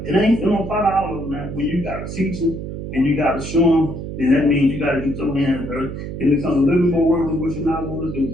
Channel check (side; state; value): right; noise; hum, 7 dB below the sound